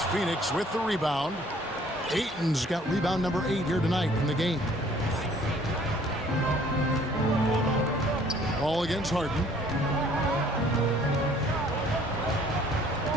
Phoenix with the rebound. Ayton's got rebound number 8 here tonight in the game. Ball against Harden.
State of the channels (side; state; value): both; normal; correlation 0.57